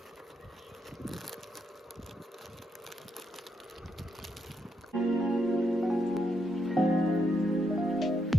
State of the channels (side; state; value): both; normal; correlation 0.80